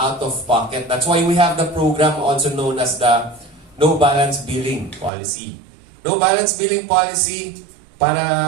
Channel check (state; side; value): drops out; left; at 5.1 s